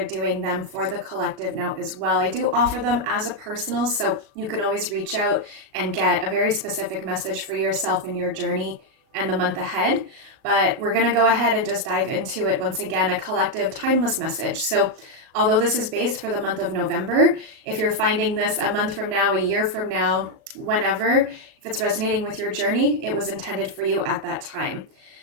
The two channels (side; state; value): left; late; 37 ms